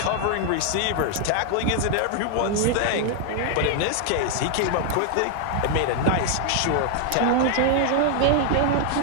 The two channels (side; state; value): both; different; correlation 0.00